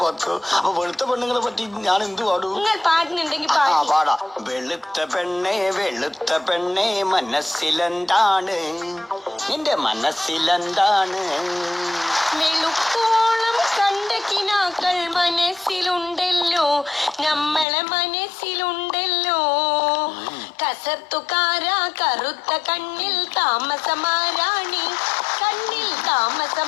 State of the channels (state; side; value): drops out; right; at 17.7 s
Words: പാത്തു. അപ്പൊ വെളുത്ത പെണ്ണുങ്ങളെ പറ്റി ഞാൻ എന്ത് പാടും? നിങ്ങൾ പാടുന്നുണ്ടെങ്കിൽ പാടാ. വെളുത്ത പെണ്ണേ മനസ്സിലെന്താണ്? നിന്റെ മനസ്സിലെന്താണ്? വെളുപ്പോളം കണ്ട കിനാക്കൾ മനസ്സിലുണ്ടല്ലോ, നമ്മളെ മനസ്സിലുണ്ടല്ലോ. കസർത്തുകാരാ കറുത്ത കണ്ണിൽ താമസമാരാണി, കണ്ണിൽ